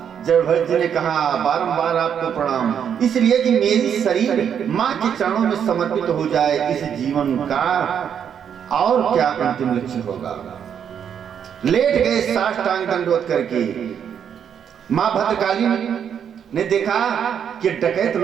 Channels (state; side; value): quieter; left; 8.2 dB